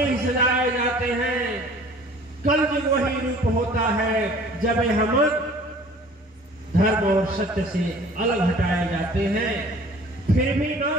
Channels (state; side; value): normal; both; correlation 0.49